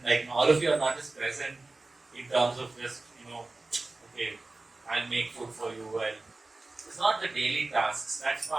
like all of you are not just present in terms of just, okay, I'll make food for you, it's not the daily tasks, that's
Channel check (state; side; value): quieter; left; 3.2 dB